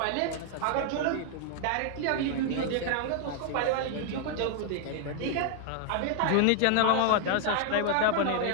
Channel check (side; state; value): both; different; correlation 0.00